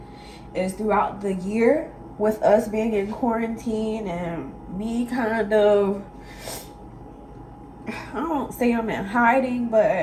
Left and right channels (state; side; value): identical; both; correlation 1.00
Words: is throughout the year with us being in quarantine and me kind of, I don't say I'm in hiding,